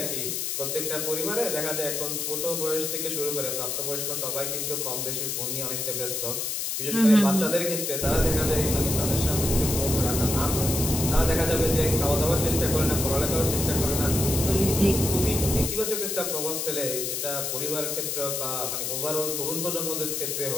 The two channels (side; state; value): left; noise; hiss, 2 dB below the sound